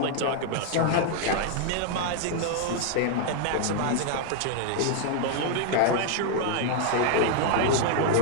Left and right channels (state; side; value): different; both; correlation 0.00